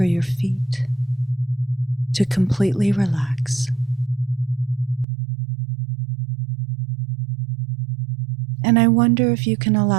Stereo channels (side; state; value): left; drops out; at 5.1 s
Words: your feet to completely relax. And I wonder if you can